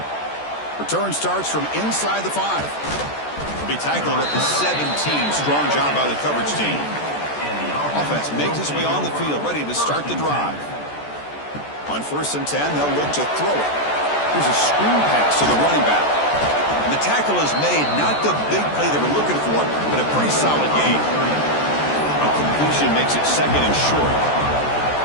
Return starts from inside the 5. He'll be tackled at the 17. Strong job by the coverage team. Offense makes its way on the field, ready to start the drive. On 1st and 10, they'll look to throw it. Here's a screen pass to the running back. And the tackle is made, not the big play they were looking for, but a pretty solid gain. A completion makes it 2nd and short.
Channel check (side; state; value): right; late; 14 ms